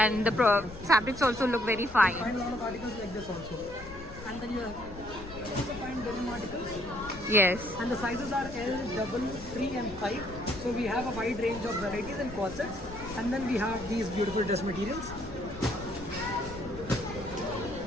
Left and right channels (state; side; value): noise; left; rumble, 14 dB below the sound